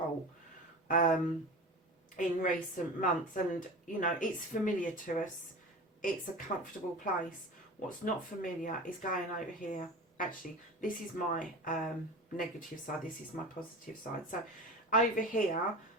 in recent months. And, you know, it's familiar to us. It's a comfortable place. What's not familiar is going over here. Actually, this is my negative side. This is my positive side. So over here,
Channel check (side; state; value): both; normal; correlation 0.32